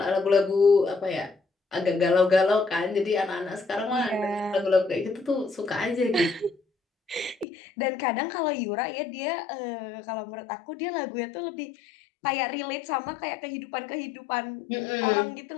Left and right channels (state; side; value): drops out; right; at 7.5 s